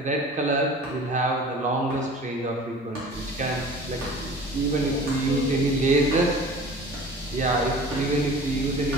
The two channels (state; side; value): normal; both; correlation 0.42